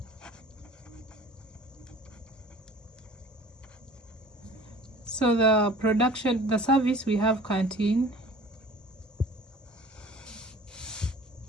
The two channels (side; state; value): both; normal; correlation 0.45